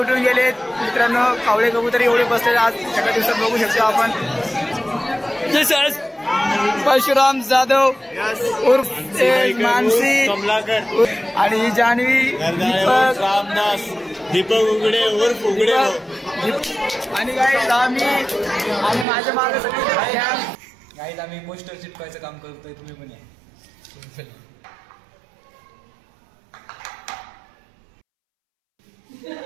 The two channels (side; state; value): left; drops out; at 19.1 s